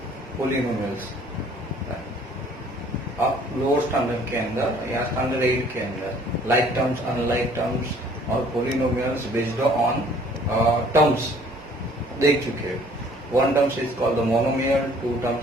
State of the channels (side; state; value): both; normal; correlation 0.56